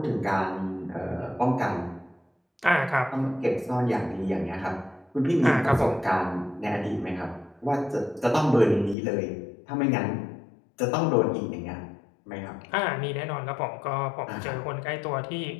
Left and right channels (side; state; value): right; drops out; at 9.0 s